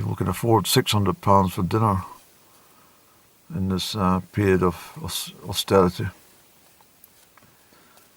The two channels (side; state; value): both; identical; correlation 1.00